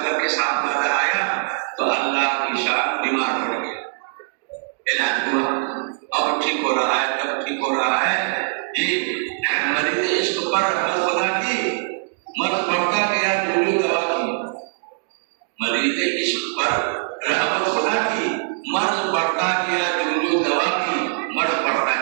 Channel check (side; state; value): left; silent; digital silence